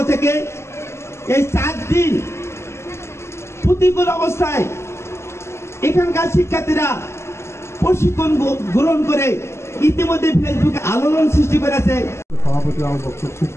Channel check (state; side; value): late; right; 0.13 ms